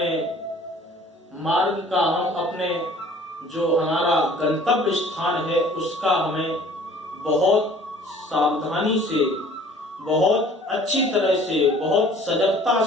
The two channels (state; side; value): normal; both; correlation 0.51